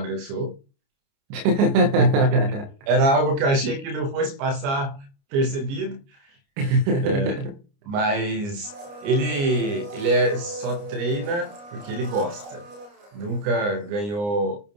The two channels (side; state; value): left; late; 29 ms